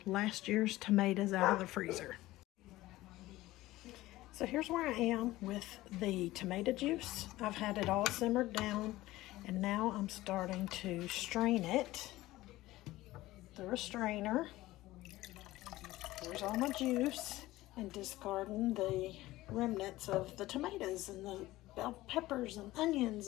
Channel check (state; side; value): quieter; right; 17.3 dB